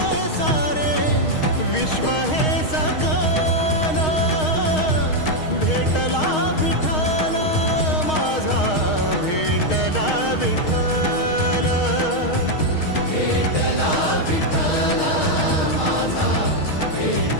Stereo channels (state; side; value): late; right; 6.4 ms